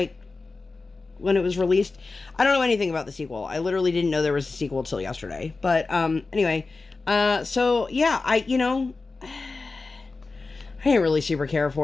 when it was released. I don't know anything about the sequel. I literally didn't know there was a sequel till yesterday. But, anyway, so, yeah, I didn't really super care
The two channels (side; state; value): right; quieter; 3.8 dB